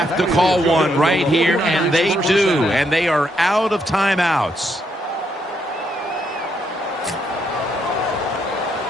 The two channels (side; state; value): both; normal; correlation 0.76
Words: to call one right here, and they do. And they are out of timeouts.